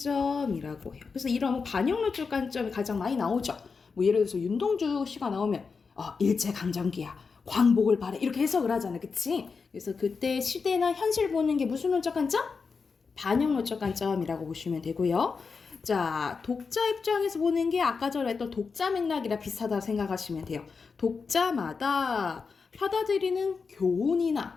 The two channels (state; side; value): quieter; right; 5.0 dB